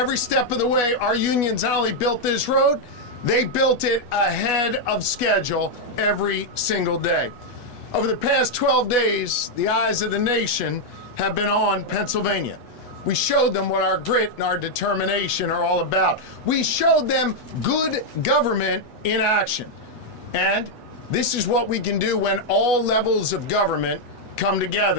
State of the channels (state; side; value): late; right; 8.2 ms